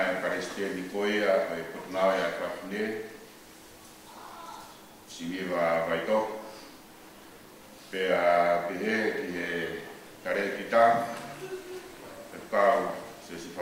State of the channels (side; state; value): both; identical; correlation 1.00